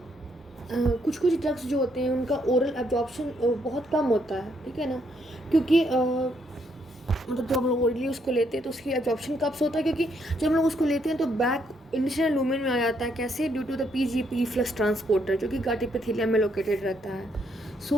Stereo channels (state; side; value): normal; both; correlation 0.73